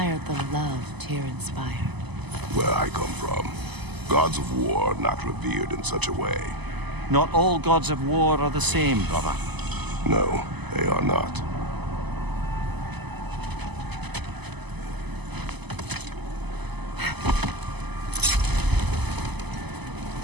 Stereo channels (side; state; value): left; late; 0.99 ms